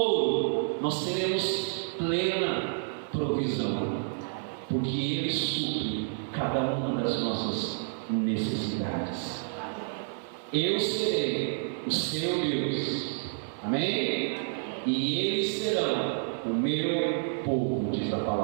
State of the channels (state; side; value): silent; left; digital silence